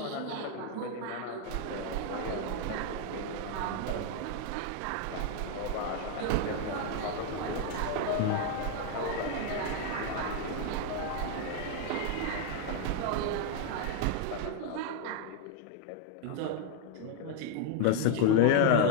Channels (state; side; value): different; both; correlation 0.00